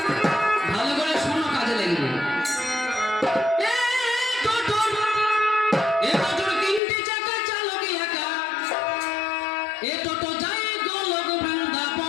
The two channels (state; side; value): drops out; right; at 6.8 s